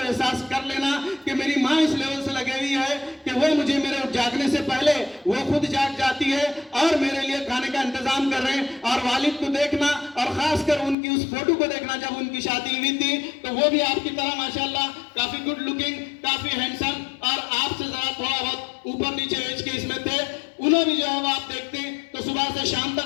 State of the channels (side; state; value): right; drops out; at 11.0 s